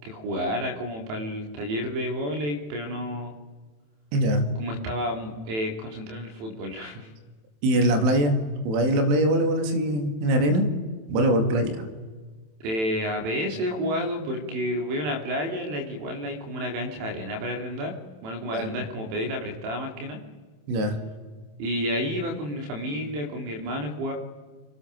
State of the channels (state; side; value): late; left; 27 ms